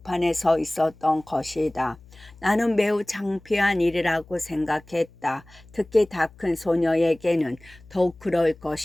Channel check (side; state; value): left; noise; hum, 24 dB below the sound